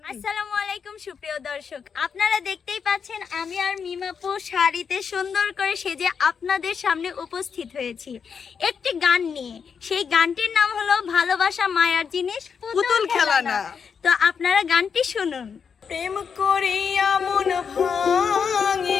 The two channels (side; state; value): right; quieter; 6.4 dB